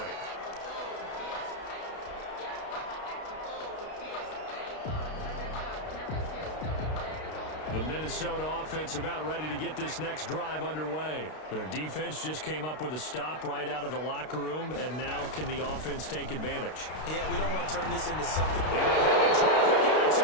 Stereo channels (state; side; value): late; right; 32 ms